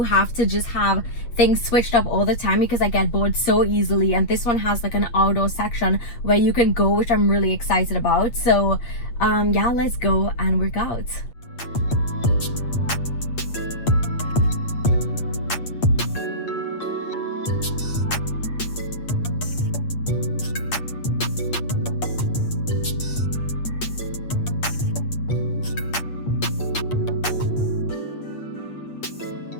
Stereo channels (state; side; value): late; right; 8.4 ms